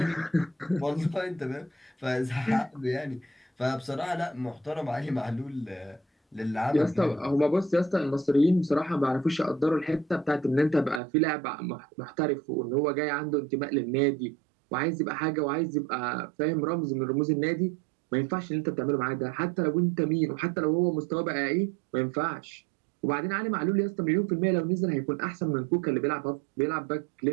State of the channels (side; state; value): left; drops out; at 11.0 s